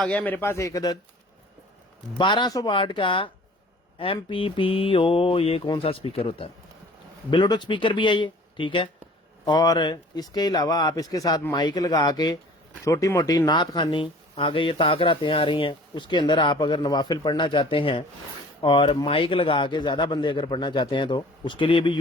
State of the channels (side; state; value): both; normal; correlation 0.48